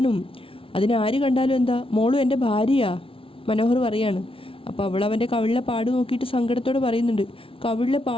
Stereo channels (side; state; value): right; late; 0.26 ms